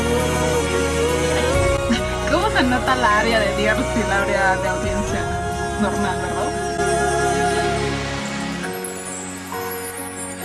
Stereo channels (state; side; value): identical; both; correlation 1.00